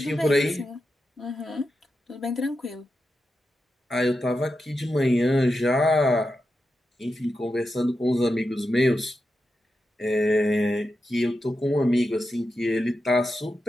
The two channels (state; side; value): normal; both; correlation 0.89